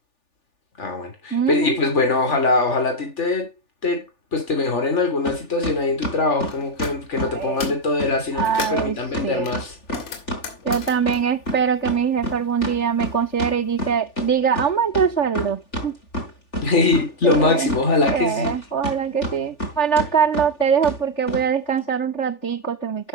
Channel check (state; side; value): late; right; 3.4 ms